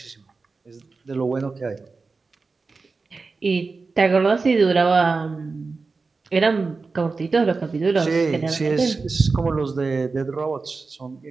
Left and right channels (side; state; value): left; quieter; 4.2 dB